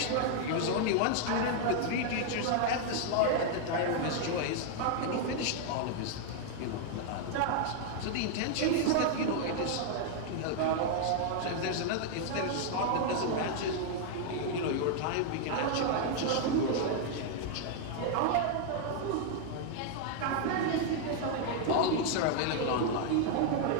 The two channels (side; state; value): both; different; correlation 0.00